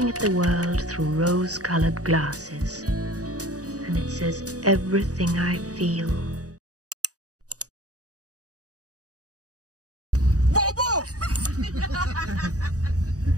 at the world through rose-colored glasses, and it says everything I feel. Bobo!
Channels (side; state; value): left; late; 0.67 ms